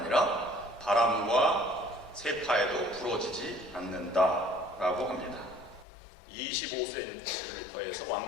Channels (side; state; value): right; drops out; at 5.9 s